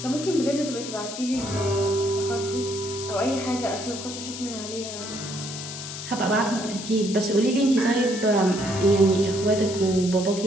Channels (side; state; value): left; noise; hiss, 9 dB below the sound